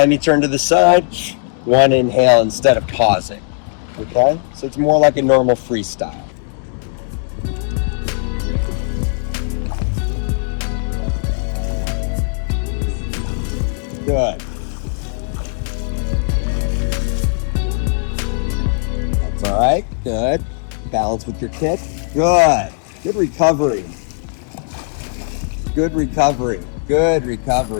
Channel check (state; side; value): silent; right; digital silence